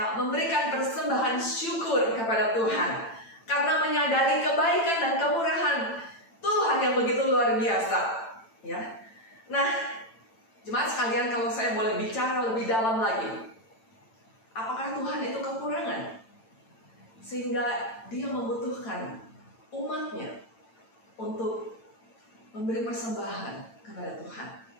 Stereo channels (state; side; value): late; right; 8.9 ms